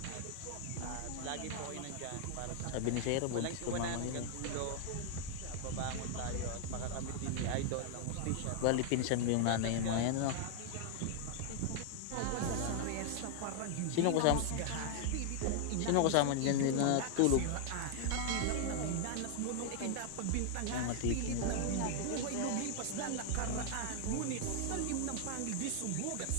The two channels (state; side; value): different; both; correlation 0.00